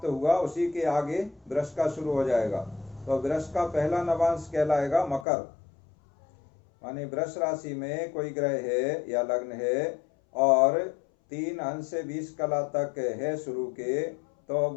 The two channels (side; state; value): right; drops out; at 5.2 s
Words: हुआ उसी के आगे वृष का शुरू हो जाएगा। तो वृष का पहला नवांश कहलाएगा मकर, माने वृष राशि में कोई ग्रह है या लग्न है और 3 अंश से 20 कला तक है शुरू के, तो